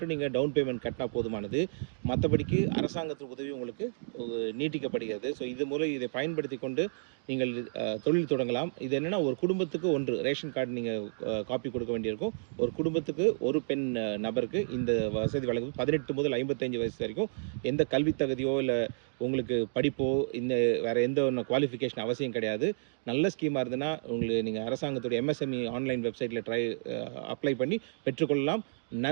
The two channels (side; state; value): left; silent; digital silence